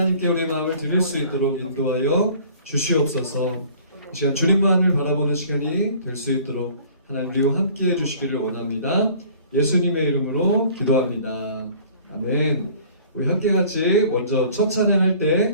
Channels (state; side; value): inverted; both; correlation -0.51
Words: 우리의 마음을 드릴 수 있도록 인도하여 주시옵소서. 이 시간 주님만을 바라보는 시간이 될 수 있도록 하나님 우리와 함께해 주시기를 원합니다. 예수님의 이름으로 기도합니다. 아멘. 우리 함께 같이 먼저 첫 찬양할